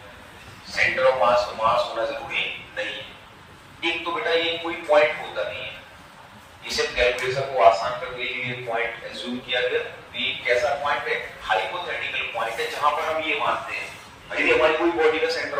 सेंटर ऑफ मास पे मास होना जरूरी नहीं है। एक तो बेटा ये कोई पॉइंट होता नहीं है। इसे कैलकुलेशन को आसान करने के लिए पॉइंट एज्यूम किया गया। ये कैसा पॉइंट है? हाइपोथेटिकल पॉइंट है जहां पर हम ये मानते हैं यदि हमारी कोई बॉडी का सेंटर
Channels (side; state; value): both; identical; correlation 1.00